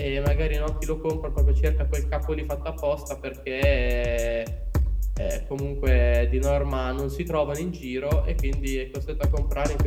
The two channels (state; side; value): identical; both; correlation 1.00